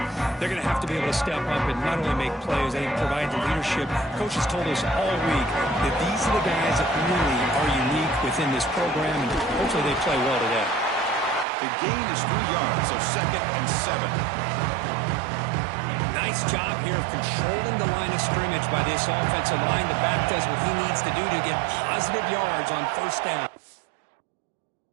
they're going to have to be able to step up and not only make plays, I think provide the leadership. Coach has told us all week that these are the guys that really are unique within this program, and hopefully they play well today. The gain is 3 yards, so 2nd and 7. Nice job here of controlling the line of scrimmage by this offensive line. The back does what he needs to do to get positive yards on first down.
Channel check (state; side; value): drops out; left; at 11.5 s